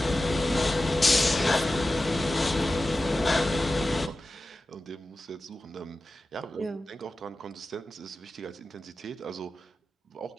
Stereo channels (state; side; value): normal; both; correlation 0.94